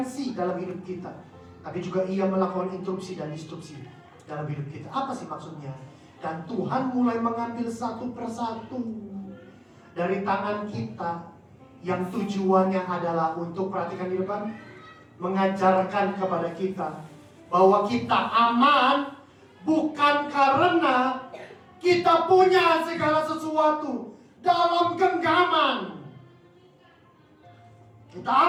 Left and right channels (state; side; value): identical; both; correlation 1.00